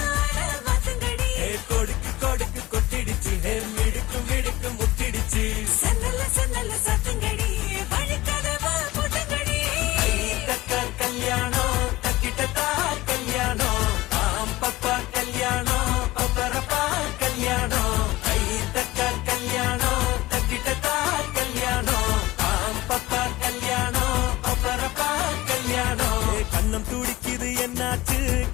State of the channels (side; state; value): right; quieter; 18.5 dB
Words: கொடுக்கு கொடுக்கு கொட்டிடுச்சு மிடுக்கு மிடுக்கு முட்டிடுச்சு சன்னல்ல சன்னல்ல சத்துங்கடி வழிக்கதவா முட்டுங்கடி. தக்கா கல்யாணம் தக்கிட்டதா கல்யாணம் பாம்பப்பா கல்யாணம் பப்பரப்பா கல்யாணம். கை தக்கா கல்யாணம் தக்கிட்டதா கல்யாணம் பாம்பப்பா கல்யாணம் பப்பரப்பா கல்யாணம். கண்ணும் துடிக்குது என்னாச்சு